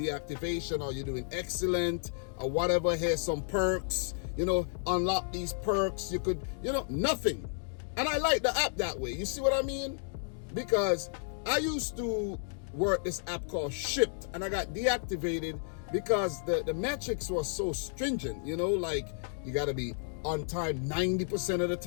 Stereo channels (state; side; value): silent; right; digital silence